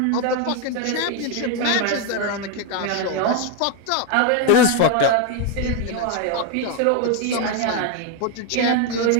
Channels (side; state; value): both; different; correlation 0.01